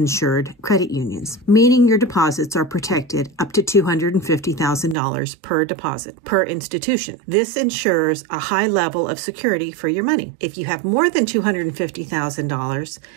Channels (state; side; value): drops out; left; at 5.0 s